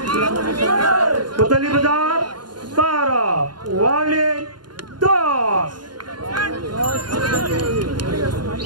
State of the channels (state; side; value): late; left; 0.71 ms